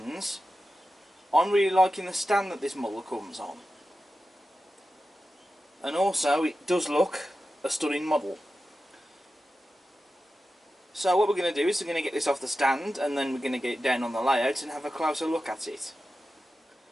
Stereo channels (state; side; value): normal; both; correlation 0.92